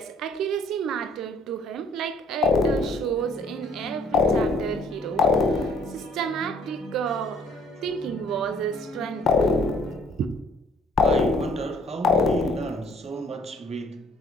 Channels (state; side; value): normal; both; correlation 0.58